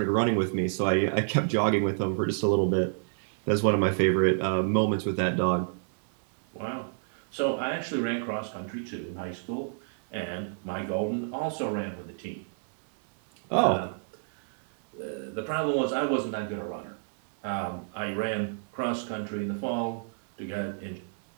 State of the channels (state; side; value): silent; left; digital silence